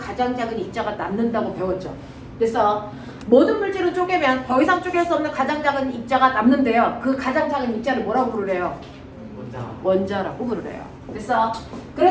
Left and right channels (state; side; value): identical; both; correlation 1.00